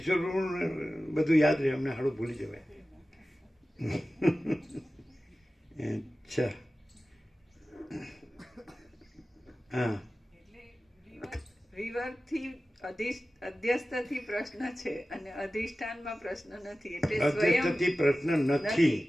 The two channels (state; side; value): normal; both; correlation 0.95